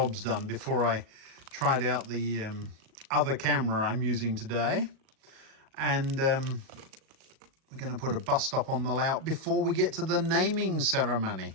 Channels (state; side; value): late; left; 37 ms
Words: done before I tried out the other camera I'm using today. And we're going to put a bus stop on the layout before we get to the naming ceremony.